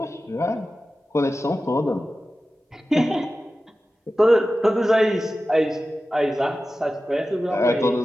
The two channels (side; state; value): both; normal; correlation 0.94